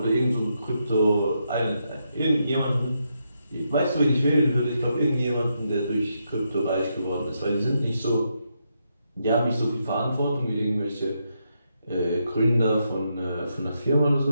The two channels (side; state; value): both; inverted; correlation -0.81